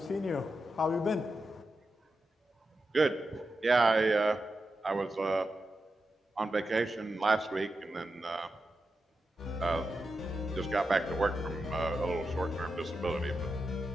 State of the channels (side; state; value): both; normal; correlation 0.89